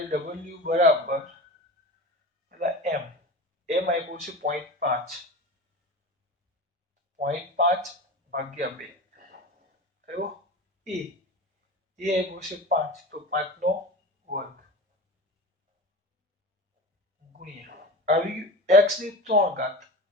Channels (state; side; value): normal; both; correlation 0.31